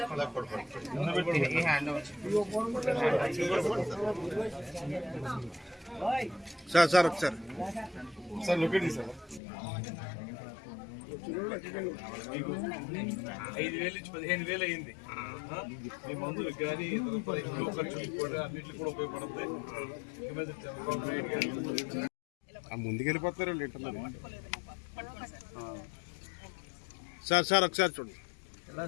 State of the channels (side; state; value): right; drops out; at 9.4 s